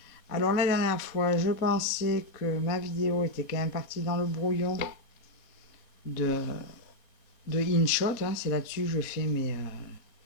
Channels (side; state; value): right; late; 4.1 ms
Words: Alors la dernière fois, je pensais que ma vidéo était quand même partie dans le brouillon de InShot, hein, c'est là-dessus que je fais mes